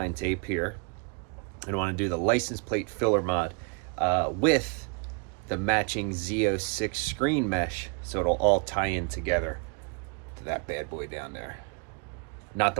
tape here and I want to do the license plate filler mod with the matching Z06 screen mesh, so it'll all tie in together to that bad boy down there. Not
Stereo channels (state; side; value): quieter; left; 35.6 dB